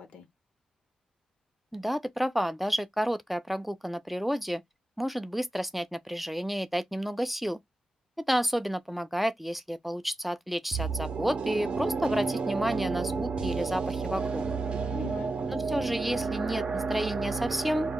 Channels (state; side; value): normal; both; correlation 0.92